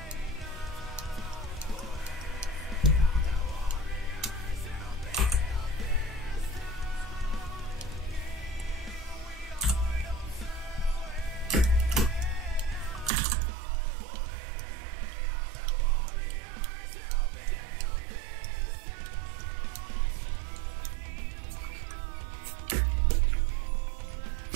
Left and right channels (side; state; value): left; drops out; at 13.1 s